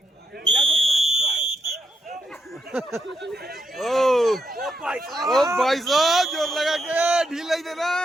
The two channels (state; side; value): normal; both; correlation 0.79